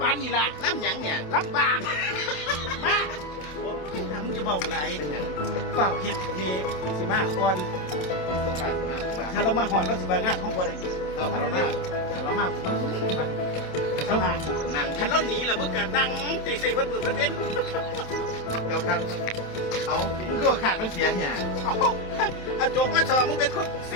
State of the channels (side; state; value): right; late; 27 ms